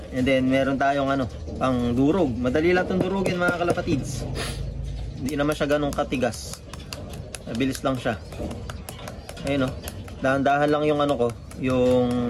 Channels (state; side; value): identical; both; correlation 1.00